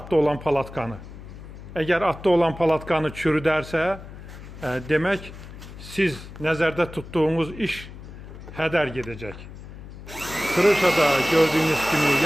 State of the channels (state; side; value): noise; left; hum, 14 dB below the sound